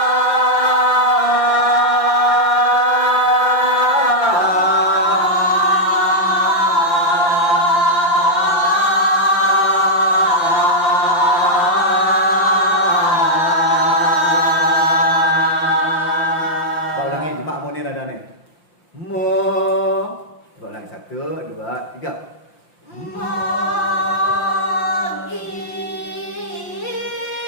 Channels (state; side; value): late; right; 5.8 ms